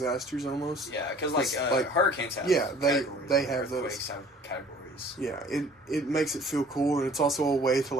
almost. Yeah, because like hurricanes have they have those. Have categories. Yeah, it makes it feel cool, and it's also a way to,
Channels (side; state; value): both; normal; correlation 0.51